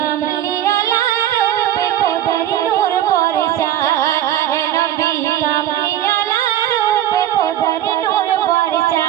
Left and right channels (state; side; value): quieter; left; 12.2 dB